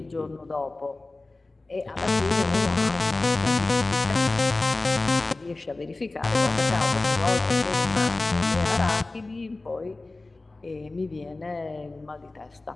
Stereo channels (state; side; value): quieter; right; 3.2 dB